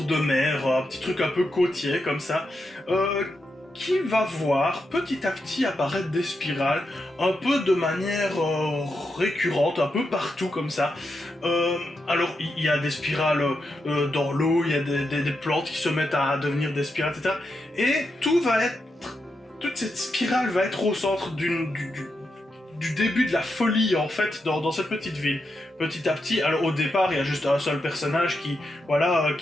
de mer, un petit truc un peu côtier comme ça, qui va voir petit à petit apparaître des spirales, un peu de manière récurrente, un peu partout comme ça. Alors, il y a des spirales dans l'eau, il y a des plantes qui se mettent à devenir des spirales, etc. Et toute cette spirale va être au centre du début de la folie en fait dans cette petite ville. Petit à petit, alors au départ il y a juste un seul personnage qui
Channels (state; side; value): normal; both; correlation 0.85